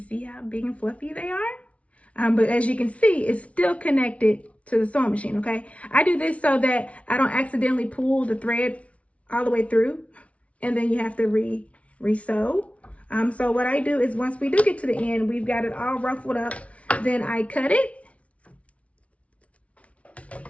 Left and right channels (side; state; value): right; late; 0.064 ms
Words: see how big and fluffy they are. But as you can see, it's still connected to the sewing machine, okay? I do this so that I don't accidentally pull the thread all the way through and then you have to re-sew. So what I do is once we do get to the end, we've got it all ruffled up, then I cut it,